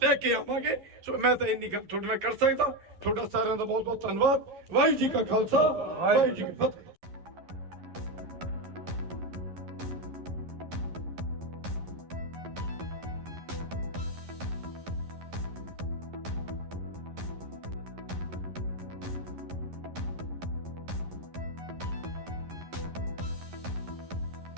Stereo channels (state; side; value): late; left; 11 ms